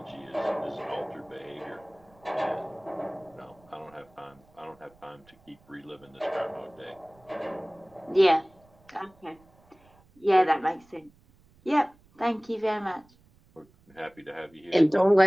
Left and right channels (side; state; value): right; noise; rumble, 30 dB below the sound